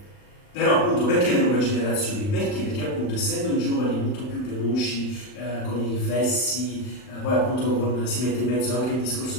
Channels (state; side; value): late; right; 39 ms